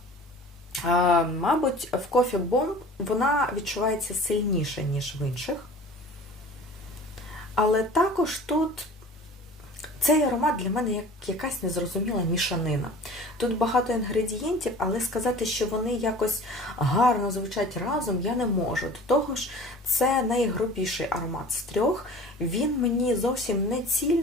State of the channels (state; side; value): normal; both; correlation 0.42